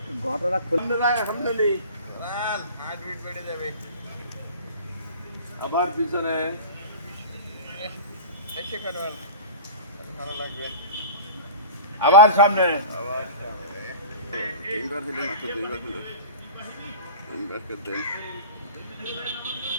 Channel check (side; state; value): both; inverted; correlation -0.36